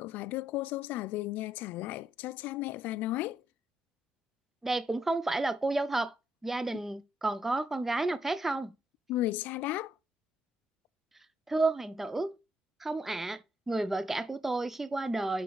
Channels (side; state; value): both; normal; correlation 0.76